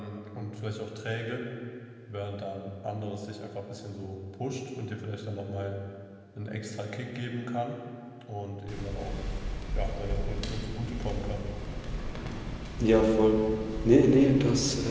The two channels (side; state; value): both; identical; correlation 1.00